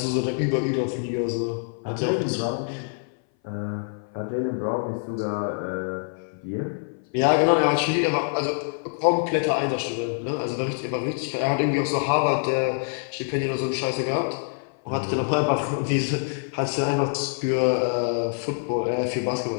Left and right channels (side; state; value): right; silent; 58 dB below the other